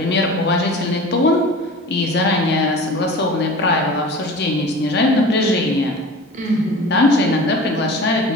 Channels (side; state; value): both; normal; correlation 0.38